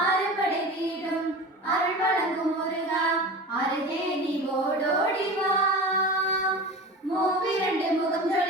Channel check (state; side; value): normal; both; correlation 0.32